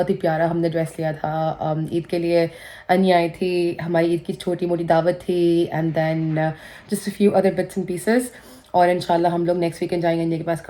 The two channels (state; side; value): identical; both; correlation 1.00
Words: ही प्यारा हमने ड्रेस लिया था ईद के लिए। अनिया आई थी, हमारी ईद की छोटी मोटी दावत थी and then just a few other bits and pieces. और इंशाल्लाह हम लोग नेक्स्ट वीकेंड जाएंगे अनिया के पास